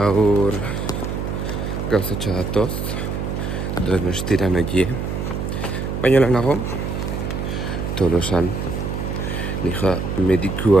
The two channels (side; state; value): right; noise; hum, 3 dB below the sound